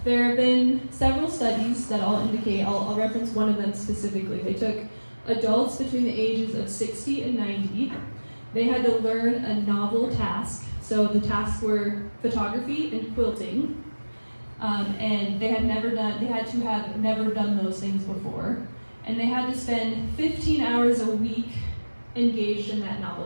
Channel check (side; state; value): both; inverted; correlation -1.00